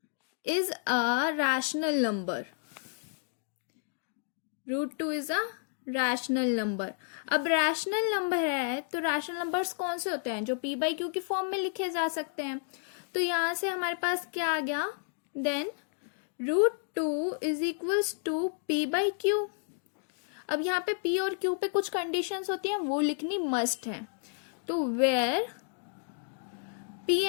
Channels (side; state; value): right; silent; digital silence